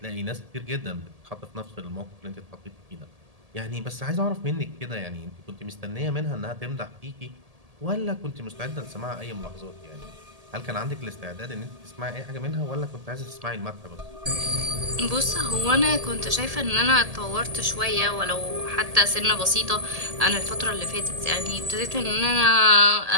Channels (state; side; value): late; left; 1.8 ms